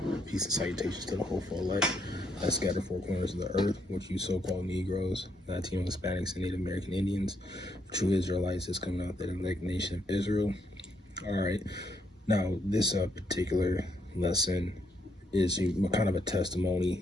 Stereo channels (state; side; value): normal; both; correlation 0.75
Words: Peace and salutations to the hopeful elect that scattered four corners of the earth, which you so-called Negroes, Latino, Hispanics, and Native American Indians, true Israelites that's coming out that elect nation of Israel. All right, now this particular lesson is kind of a testimony,